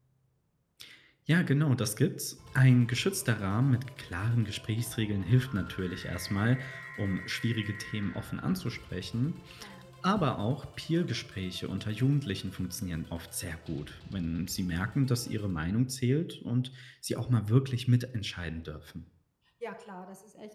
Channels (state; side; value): identical; both; correlation 1.00